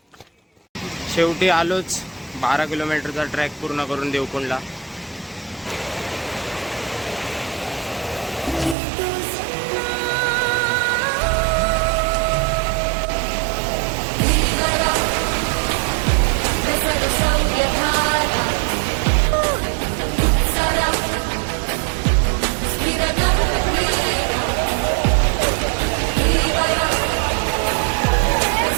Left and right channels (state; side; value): drops out; left; at 8.8 s